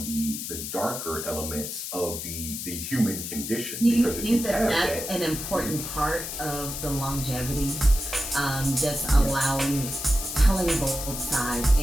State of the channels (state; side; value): noise; left; hiss, 6 dB below the sound